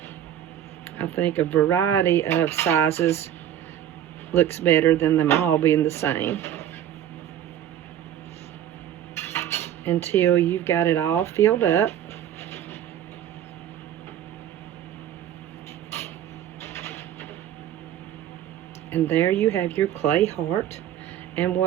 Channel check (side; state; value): left; quieter; 10.9 dB